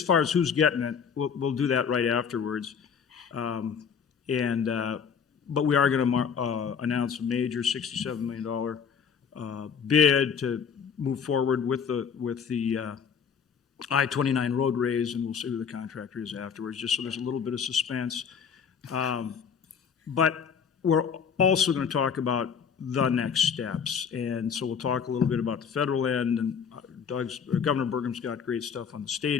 far as who's getting it, we'll do that right afterwards. But we are going to announce a major $67 million bid to move forward with the I-29 road raise, and we'll see who the contractor is afterwards, just so there's a little bit of suspense. But we're also going to talk about the next steps, and so we'll talk a little bit about the federal end, and Governor Burgum's got great stuff on the state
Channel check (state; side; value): quieter; right; 6.8 dB